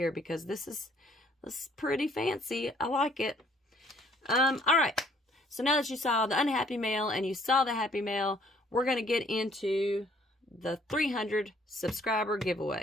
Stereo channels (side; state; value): both; normal; correlation 0.62